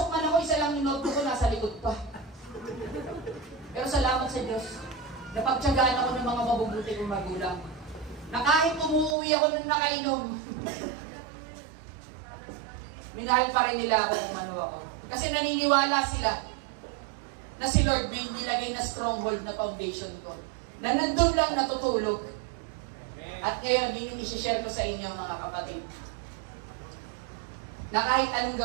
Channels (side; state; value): left; drops out; at 9.2 s